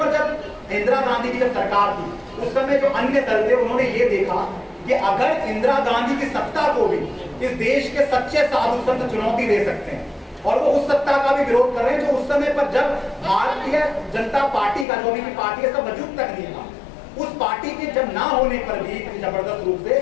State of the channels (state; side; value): drops out; right; at 14.9 s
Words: जब इंदिरा गांधी की जब सरकार थी, उस समय जो अन्य दल थे उन्होंने ये देखा कि अगर इंदिरा गांधी की सत्ता को भी इस देश के सच्चे साधु संत चुनौती दे सकते हैं, और वो उस सत्ता का भी विरोध कर रहे हैं जो उस समय पर जब भारतीय जनता पार्टी का, जो भी पार्टी है, सब वजूद तक नहीं था, उस पार्टी के जब ना होने पर भी जबरदस्त रूप से